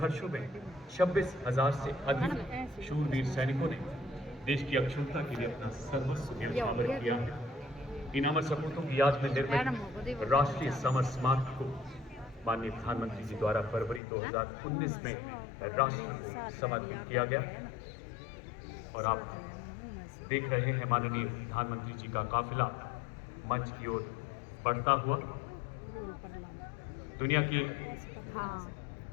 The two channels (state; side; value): drops out; right; at 14.0 s